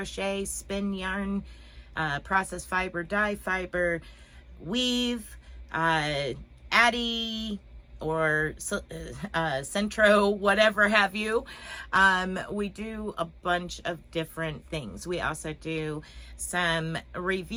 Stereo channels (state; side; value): identical; both; correlation 1.00